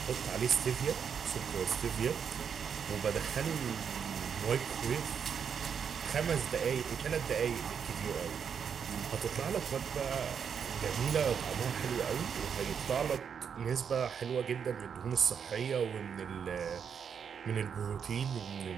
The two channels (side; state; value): left; quieter; 7.2 dB